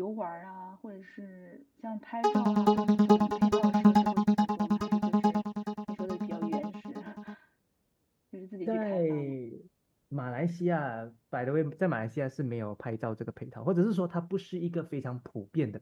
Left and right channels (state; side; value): identical; both; correlation 1.00